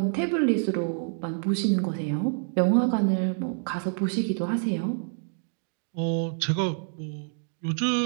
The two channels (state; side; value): silent; left; digital silence